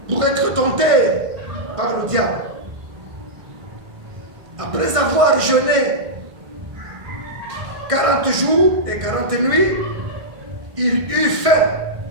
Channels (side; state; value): left; late; 1.5 ms